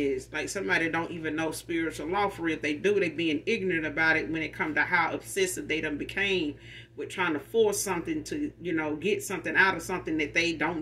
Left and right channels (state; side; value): identical; both; correlation 1.00